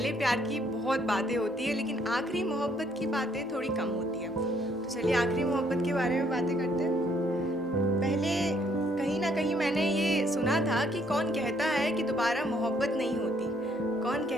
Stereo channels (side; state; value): both; normal; correlation 0.67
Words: प्यार की बहुत बातें होती है लेकिन आखिरी मोहब्बत की बातें थोड़ी कम होती है। तो चलिए आखिरी मोहब्बत के बारे में बातें करते हैं। पहले कहीं ना कहीं मैंने ये सुना था कि कौन कहता है कि दोबारा मोहब्बत नहीं होती, कौन